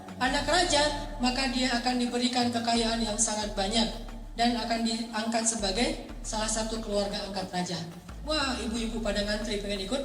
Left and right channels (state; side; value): identical; both; correlation 1.00